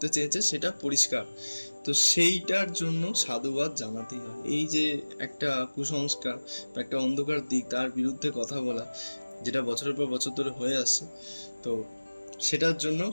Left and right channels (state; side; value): inverted; both; correlation -1.00